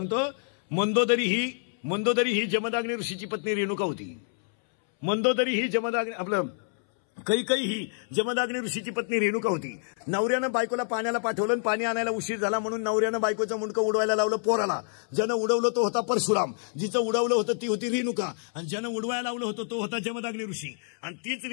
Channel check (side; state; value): right; silent; 60 dB below the other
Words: मंदोदरी ही जमदाग्नी ऋषीची पत्नी रेणुका होती. मंदोदरी ही जमदाग्नी आपलं कैकई ही जमदाग्नी ऋषीची पत्नी रेणुका होती. नवऱ्यानं बायकोला पाण्याला पाठवलं पाणी आणायला उशीर झाला म्हणून नवऱ्यानं बायकोचं मुंडकं उडवायला लावलं पोराला. ज्यानं उडवलं तो होता परशुराम. जिचं उडवलं होतं ती होती रेणुका आणि ज्यानं उडवायला लावलं होतं तो होता जमदाग्नी ऋषी. आणि तीच